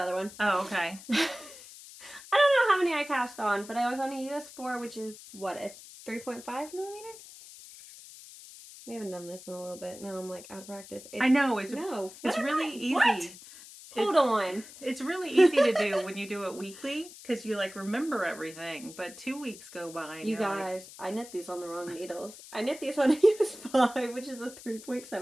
other one. Oh, okay. I don't know how many I cast on, but I was on a US4, which is what, a 3.5 millimeter? We haven't done this in a little bit. Now I'm like out of practice. I know it's really easy. What? Hold on. It's really easy to do when you do it weekly because you like remember everything. But 2 weeks go by. And you guys, I knit these on the wrong needles. I knit these on a US5, which is a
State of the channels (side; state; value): left; noise; hiss, 17 dB below the sound